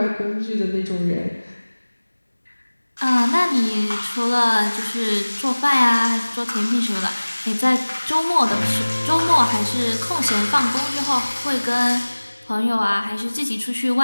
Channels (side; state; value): both; inverted; correlation -1.00